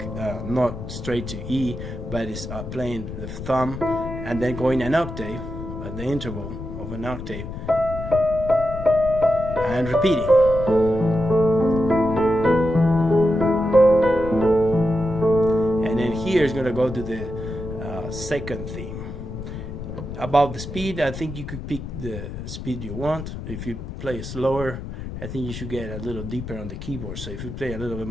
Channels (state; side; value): noise; left; rumble, 9 dB below the sound